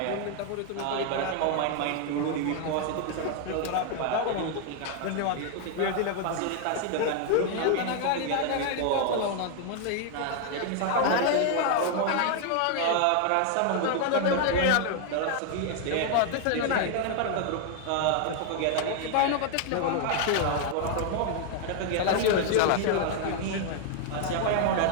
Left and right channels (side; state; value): both; different; correlation 0.00